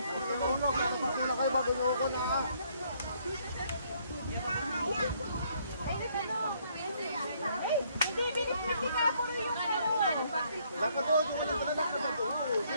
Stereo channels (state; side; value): inverted; both; correlation -0.67